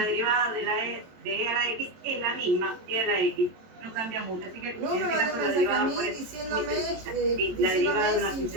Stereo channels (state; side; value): late; left; 22 ms